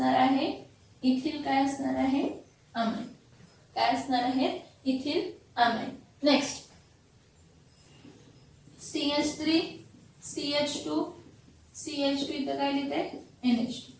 आहे, इथिल काय असणार आहे, अमाइन. काय असणार आहे, इथिल अमाइन. नेक्स्ट CH3CH2 इथं काय लिहिते, NH2.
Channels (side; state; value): both; identical; correlation 1.00